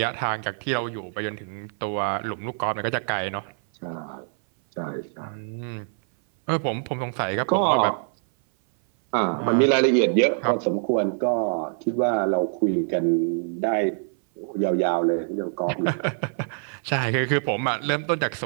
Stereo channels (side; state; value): left; silent; 58 dB below the other